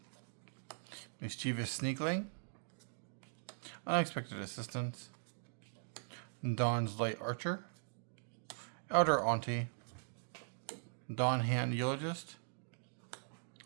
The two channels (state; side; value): silent; left; digital silence